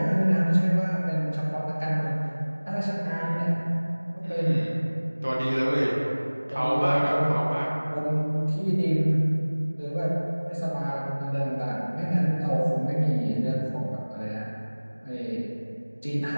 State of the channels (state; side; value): inverted; both; correlation -1.00